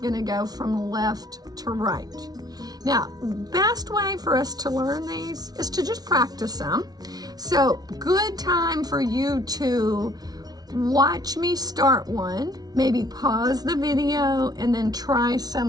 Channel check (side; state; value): left; late; 0.19 ms